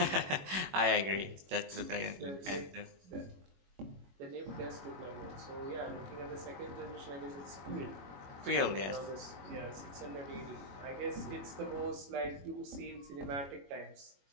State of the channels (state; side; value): late; left; 21 ms